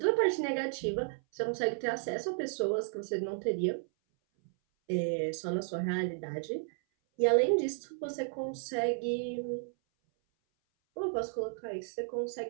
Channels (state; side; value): silent; left; 56 dB below the other